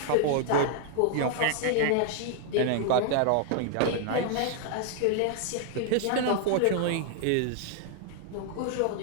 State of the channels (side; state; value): both; different; correlation 0.00